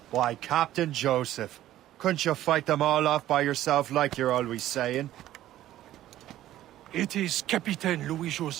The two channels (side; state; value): left; quieter; 13.6 dB